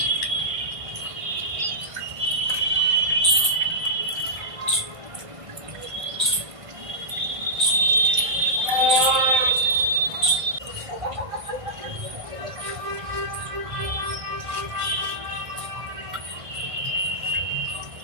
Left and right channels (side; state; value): left; late; 1.5 ms